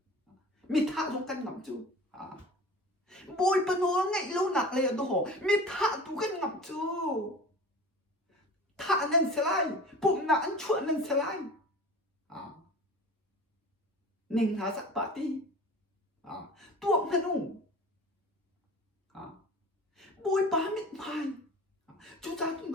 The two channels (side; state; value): both; normal; correlation 0.39